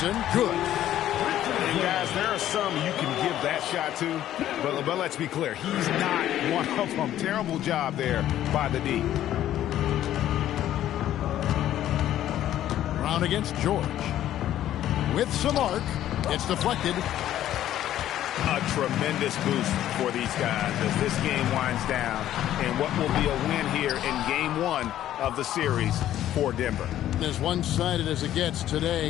good. And guys, there are some you can give that shot to, but let's be clear, he's not one of them. Terrible job there by the D. Brown against George. With some arc, it's deflected. A tremendous boost for these guys as this game winds down and what will be a win here in game 1 of the series for Denver. As one-sided as it gets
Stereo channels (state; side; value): quieter; right; 12.3 dB